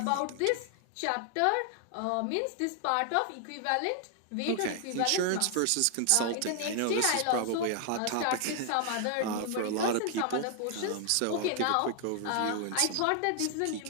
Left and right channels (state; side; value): different; both; correlation 0.00